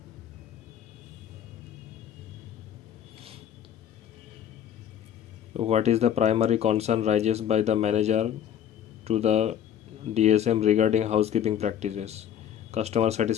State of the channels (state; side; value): quieter; right; 9.8 dB